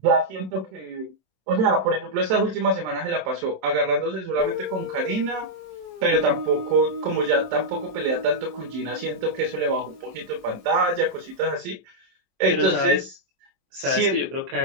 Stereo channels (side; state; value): left; late; 23 ms